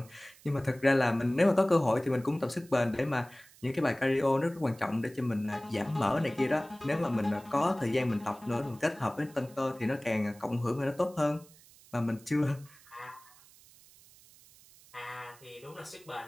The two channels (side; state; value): right; noise; hiss, 24 dB below the sound